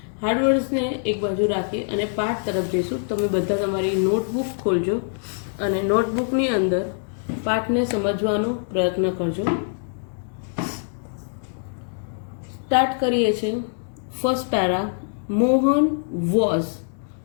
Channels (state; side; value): silent; right; digital silence